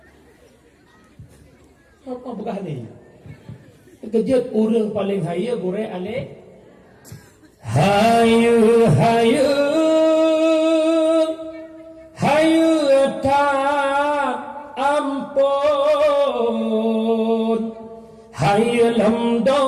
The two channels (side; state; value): both; identical; correlation 1.00